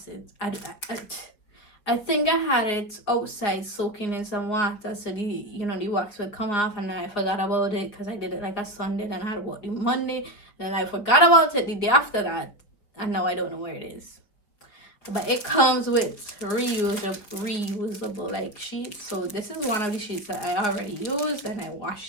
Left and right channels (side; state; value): right; late; 5.0 ms